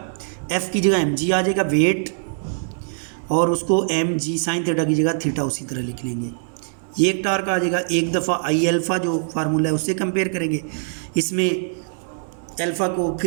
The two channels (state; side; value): silent; left; digital silence